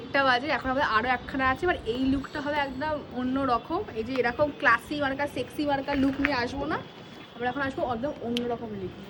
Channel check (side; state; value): both; identical; correlation 1.00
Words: বাজে। এখন আমাদের আরো একখানা আছে, এবার এই লুকটা হবে একদম অন্য রকম। এই যে এরকম ক্লাসি মার্কা সেক্সি মার্কা লুক নিয়ে আসবো না, আমরা এখন আসবো একদম অন্যরকম লুক